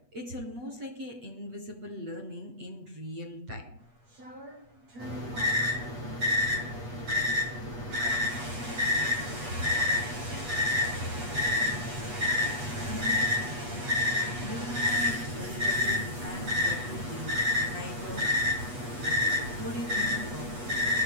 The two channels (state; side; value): late; left; 8.3 ms